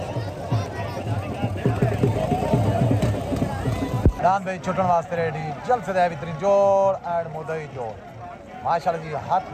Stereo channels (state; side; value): identical; both; correlation 1.00